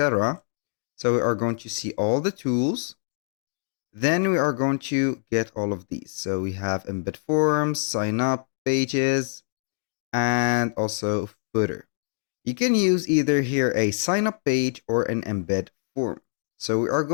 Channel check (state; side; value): silent; right; digital silence